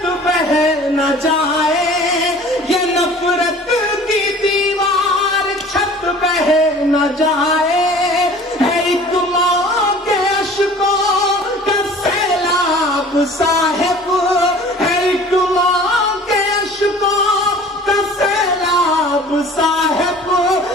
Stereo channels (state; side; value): normal; both; correlation 0.46